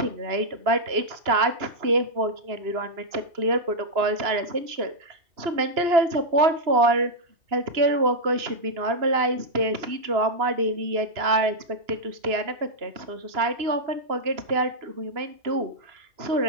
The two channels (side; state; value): left; late; 2.9 ms